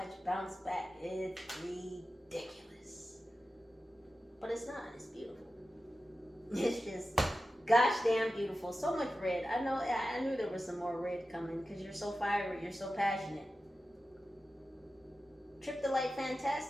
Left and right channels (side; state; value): both; normal; correlation 0.93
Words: bounce back. It's ridiculous. But it's not. It's beautiful. It's just gosh damn beautiful. So much red. I knew there was some more red coming because you're so fiery. You're so passionate. Trip the light,